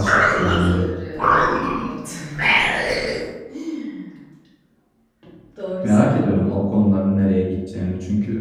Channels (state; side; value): identical; both; correlation 1.00